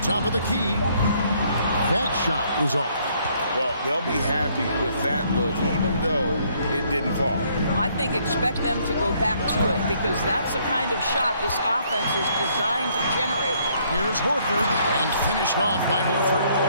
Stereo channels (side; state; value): both; inverted; correlation -0.67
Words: of the key. That shot is off. Well, they'll be happy with that look, even though it didn't fall. I think expect them to go back to it because that's the kind of shot this offense is designed to generate. Here's Horford, and finished off by Horford.